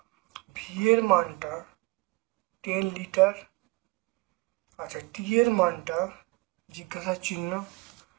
ভি এর মানটা 10 লিটার, আচ্ছা টি এর মানটা জিজ্ঞাসা চিহ্ন,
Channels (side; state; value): left; quieter; 24.3 dB